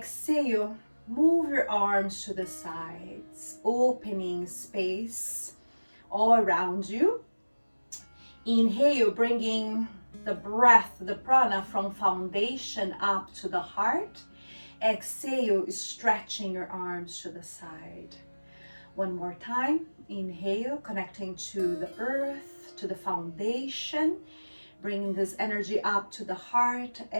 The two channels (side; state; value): both; inverted; correlation -1.00